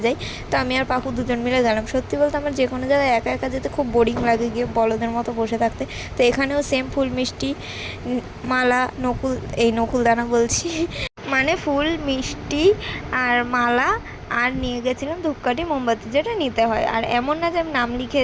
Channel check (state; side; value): identical; both; correlation 1.00